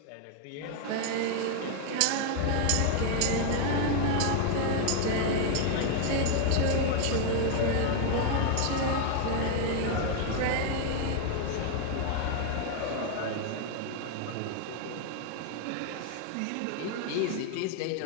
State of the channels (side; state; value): both; different; correlation 0.00